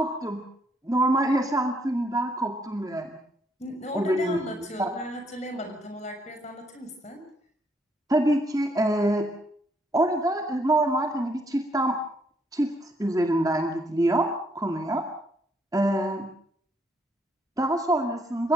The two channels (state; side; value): normal; both; correlation 0.71